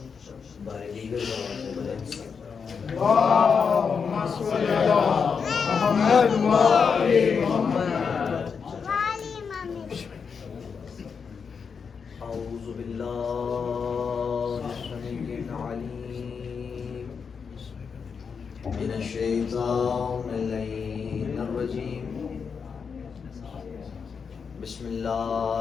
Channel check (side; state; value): right; quieter; 6.0 dB